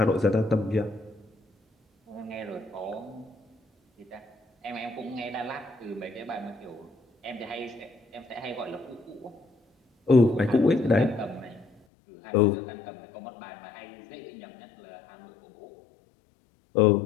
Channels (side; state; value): right; drops out; at 11.7 s